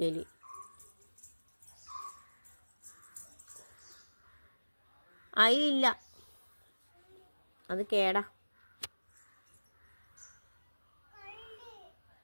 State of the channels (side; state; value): both; inverted; correlation -1.00